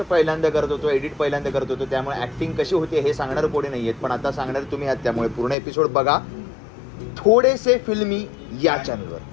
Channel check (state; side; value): drops out; right; at 5.6 s